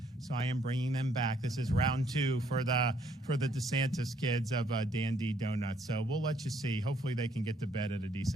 so I am bringing them back. This is round 2 for the DeSantis kids of Dandy Donuts. So we'll let you see. Hopefully they can get to bed at a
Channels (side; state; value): both; normal; correlation 0.68